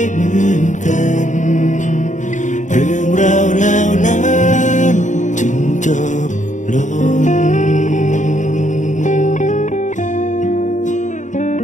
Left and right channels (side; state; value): right; late; 0.36 ms